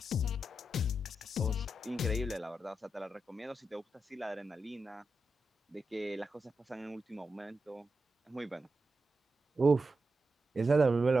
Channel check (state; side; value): normal; both; correlation 0.88